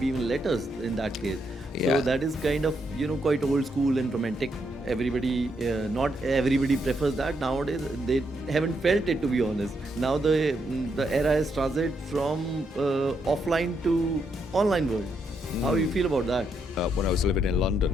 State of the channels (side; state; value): both; normal; correlation 0.78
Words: even letters in that case. So Yeah. that is kind of, quite old school and romantic. Everybody, not everybody prefers that nowadays. They haven't felt it, to be honest. Now the era has transited from offline to online world. How you feel about that? When I was living in London